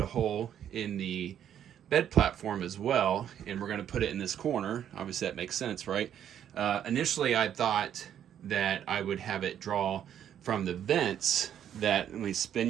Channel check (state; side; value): quieter; left; 9.8 dB